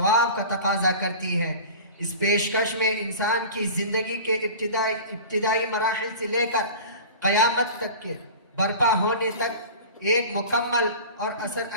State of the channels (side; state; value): both; inverted; correlation -0.37